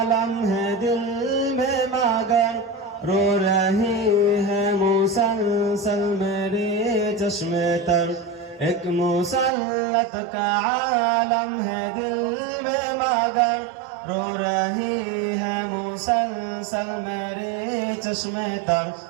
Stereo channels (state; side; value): drops out; left; at 9.5 s